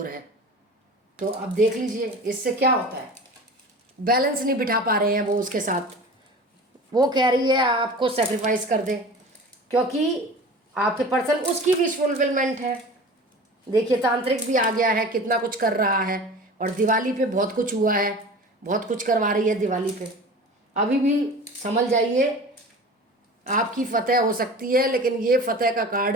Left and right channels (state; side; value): normal; both; correlation 0.37